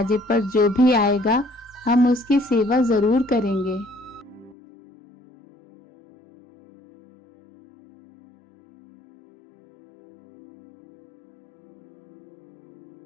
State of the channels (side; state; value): right; drops out; at 4.5 s